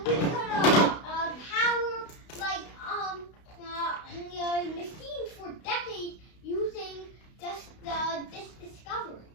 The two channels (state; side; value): late; right; 32 ms